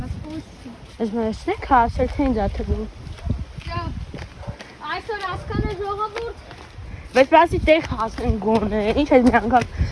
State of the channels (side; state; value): both; identical; correlation 1.00